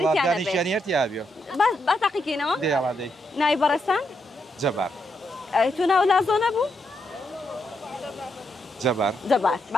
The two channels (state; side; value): normal; both; correlation 0.80